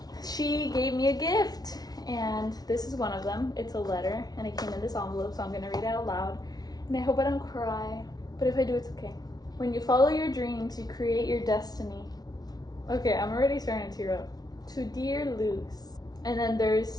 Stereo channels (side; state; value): right; late; 0.19 ms